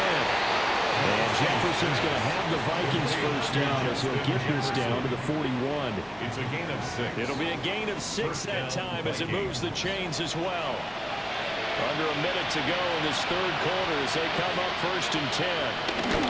And Jefferson's going to have the Vikings 1st down as he'll get this down to the 41. It's a gain of 6. It'll be a gain of 6 that time as it moves the chains as well. Under a minute to go in this 3rd quarter as they come up 1st and 10.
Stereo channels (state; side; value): noise; left; hum, 28 dB below the sound